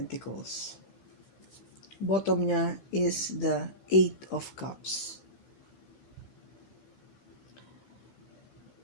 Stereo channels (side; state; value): right; late; 15 ms